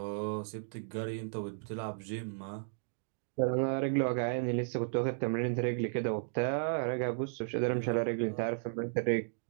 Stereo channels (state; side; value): silent; left; digital silence